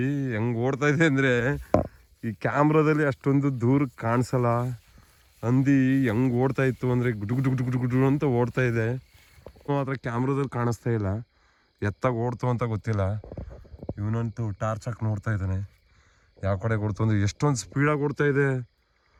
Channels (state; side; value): identical; both; correlation 1.00